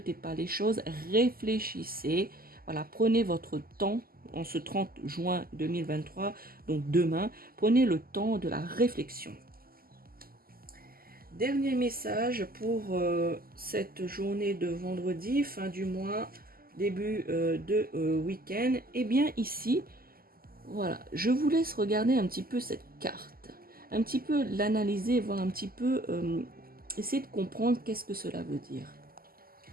pas les choses, réfléchissez. Voilà, prenez votre temps en ce 30 juin 2023, donc demain, prenez le temps de la réflexion. Dernier message pour cette journée de vendredi, fin du mois, début de week-end. Eh bien ici, voilà, je vous laisse regarder un petit peu cette carte, un petit peu l'analyser, voir un petit peu, essayer de comprendre qu'est-ce que cela veut dire.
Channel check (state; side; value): late; left; 0.42 ms